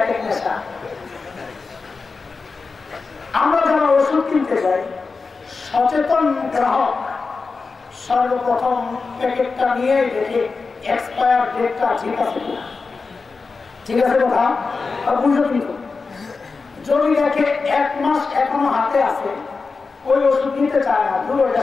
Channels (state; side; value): quieter; right; 4.4 dB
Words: এক এক নেশা। আমরা যারা ওষুধ কিনতে যাই, সচেতন গ্রাহক সর্বপ্রথম প্যাকেটটা নিয়ে দেখে এক্সপায়ার ডেটটা ঠিক আছে কিনা। ঠিক আছে কথা বুঝো, কিন্তু যদি দেখে 1 মাস এখনো হাতে আছে, ওই ওষুধ নিতে চায় না, ধরো এটা